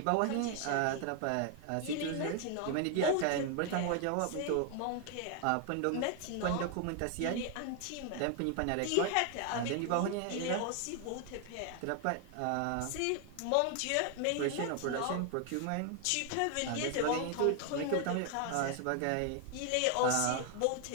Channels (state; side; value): different; both; correlation 0.00